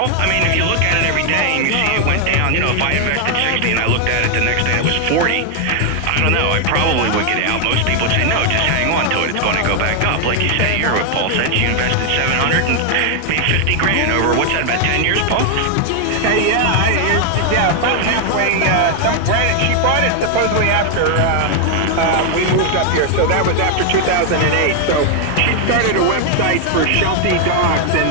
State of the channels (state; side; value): different; both; correlation 0.00